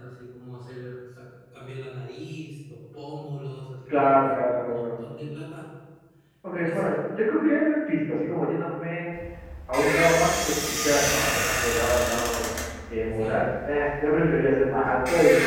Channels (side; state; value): both; identical; correlation 1.00